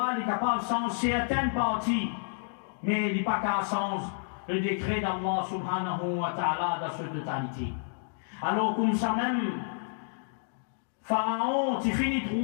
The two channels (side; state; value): right; silent; digital silence